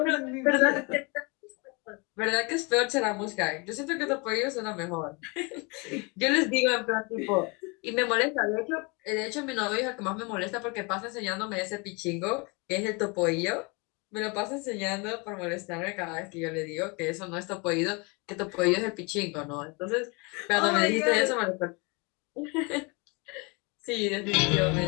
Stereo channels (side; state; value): right; quieter; 29.7 dB